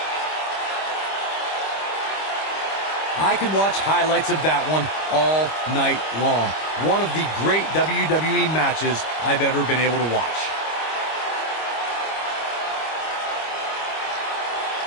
I could watch highlights of that one all night long. One of the great WWE matches I've ever been able to watch.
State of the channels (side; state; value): right; late; 25 ms